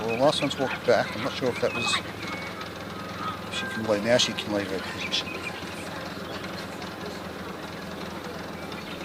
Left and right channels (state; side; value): identical; both; correlation 1.00